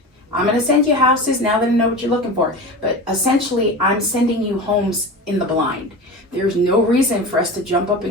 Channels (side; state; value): both; normal; correlation 0.29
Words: I'm going to send you houses now that I know what you're looking for. But essentially, I'm sending you homes in the blind. There's no reason for us to jump up